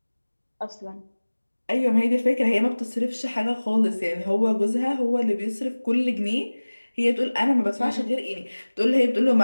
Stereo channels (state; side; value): inverted; both; correlation -1.00